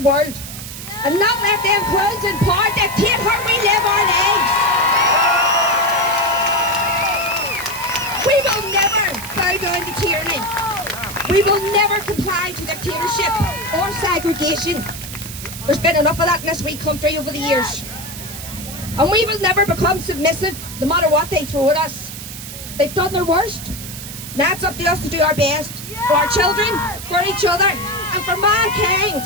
and not let them clowns in power dictate how we live our lives. We will never bow down to tyranny. We will never comply to dictatorship or segregation. There's been enough of that in this wee country over the years. And we will never become submissive no matter what they throw at us. They've done their worst. Now it's up to us to do our best for our children, for each other, and for mankind.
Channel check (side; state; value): right; noise; hiss, 11 dB below the sound